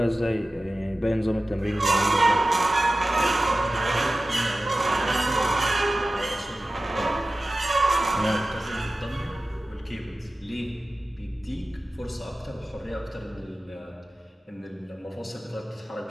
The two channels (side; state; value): both; normal; correlation 0.95